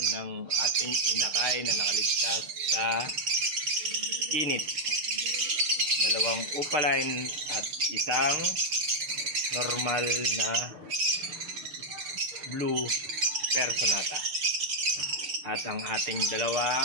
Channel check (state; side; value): late; left; 6.7 ms